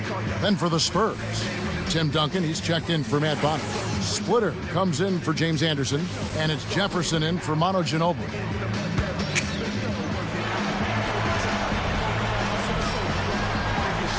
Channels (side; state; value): both; identical; correlation 1.00